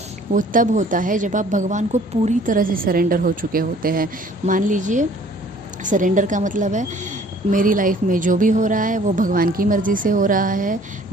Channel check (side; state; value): both; normal; correlation 0.54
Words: वो तब होता है जब आप भगवान को पूरी तरह से सरेंडर हो चुके होते हैं। मान लीजिए सरेंडर का मतलब है मेरी लाइफ में जो भी हो रहा है वो भगवान की मर्ज़ी से हो रहा है,